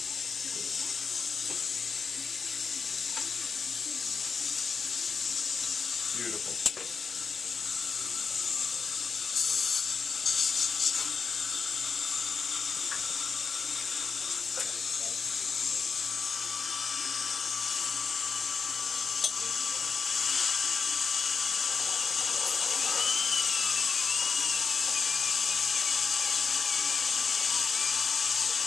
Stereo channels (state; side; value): quieter; right; 5.4 dB